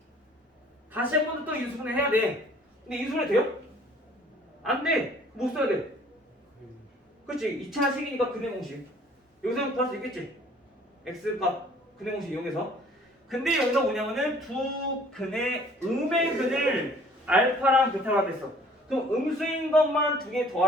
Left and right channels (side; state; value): both; normal; correlation 0.54